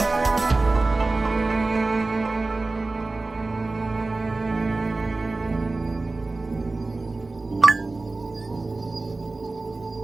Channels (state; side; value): quieter; left; 3.3 dB